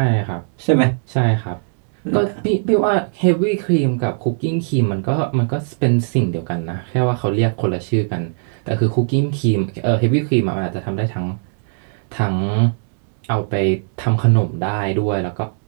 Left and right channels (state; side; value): silent; left; digital silence